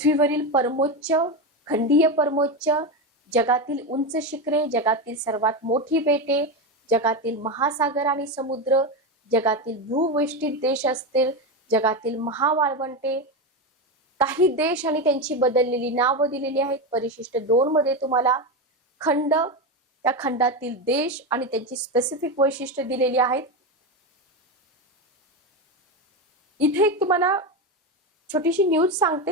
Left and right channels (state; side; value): normal; both; correlation 0.15